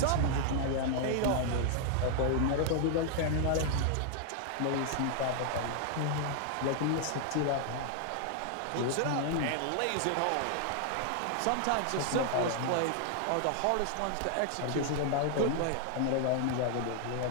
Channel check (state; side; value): different; both; correlation 0.00